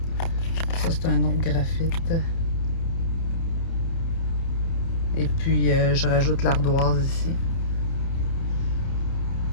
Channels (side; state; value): right; late; 30 ms